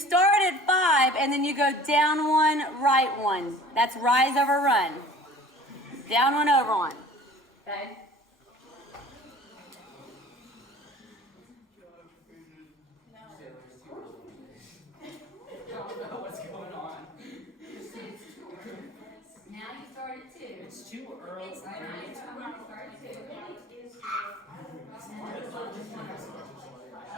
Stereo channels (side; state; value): both; normal; correlation 0.46